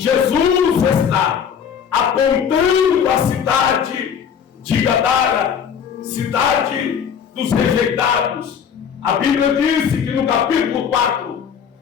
está apontando a cidade de Gadara, cidade dos rejeitados. A Bíblia diz que no capítulo 4,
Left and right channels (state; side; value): quieter; right; 7.7 dB